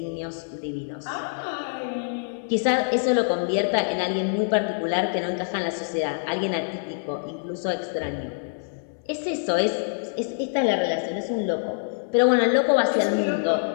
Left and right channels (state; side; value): silent; right; 61 dB below the other